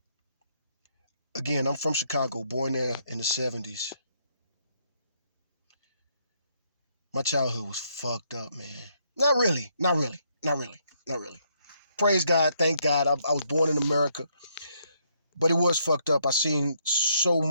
Again, I'm from Chicago, born there in the 70s. My childhood was fucked up, man. Not really. Praise God, thank God. I was born in America, but it was fucked up. I seen so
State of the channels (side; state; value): both; inverted; correlation -0.72